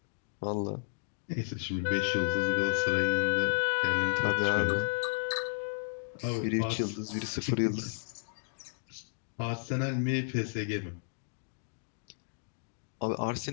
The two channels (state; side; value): silent; right; digital silence